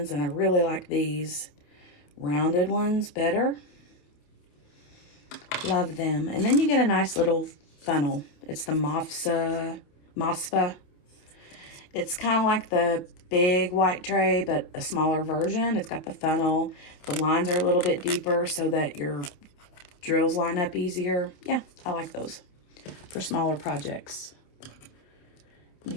and I really like these rounded ones better. Love them. And then you get a nice little funnel. It's the Mosfa. It's kind of like the big white tray, but a smaller version. It's got the funnel. The lines are a little bit deeper so that your drills line up easier. Yeah, I like those for smaller projects. Let me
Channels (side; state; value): right; late; 28 ms